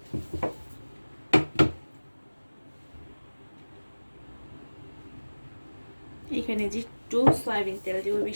এখানে যে একটু সয়াবিন তেল দিব,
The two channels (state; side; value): inverted; both; correlation -1.00